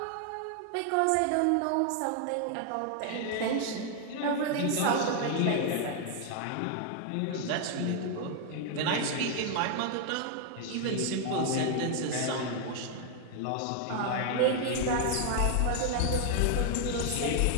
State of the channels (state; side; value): different; both; correlation 0.00